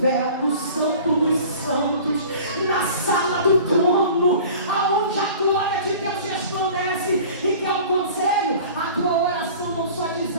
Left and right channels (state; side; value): inverted; both; correlation -0.43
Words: no santo dos santos, na sala do trono, aonde a glória de Deus resplandece. E que é um conselho: a tua oração não só